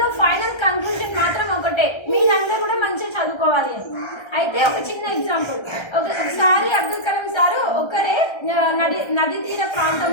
ఫైనల్ కంక్లూజన్ మాత్రం ఒకటే, మీరందరూ కూడా మంచిగా చదువుకోవాలి అని. అయితే ఒక చిన్న ఎగ్జాంపుల్. ఒకసారి అబ్దుల్ కలాం సారు ఒకరే నది తీర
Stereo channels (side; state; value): right; late; 1.3 ms